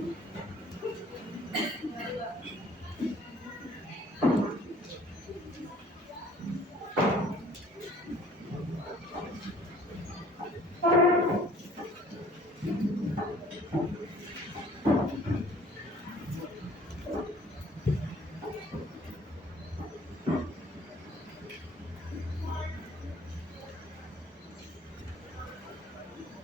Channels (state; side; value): normal; both; correlation 0.54